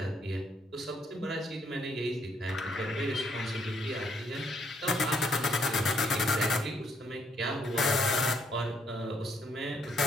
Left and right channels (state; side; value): normal; both; correlation 0.71